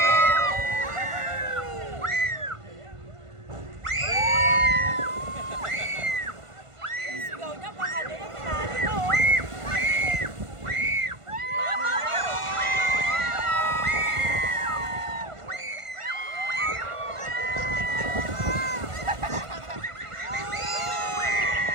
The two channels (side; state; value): left; late; 1.5 ms